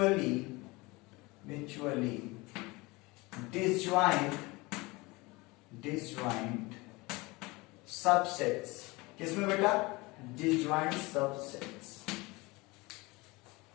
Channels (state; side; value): quieter; right; 23.6 dB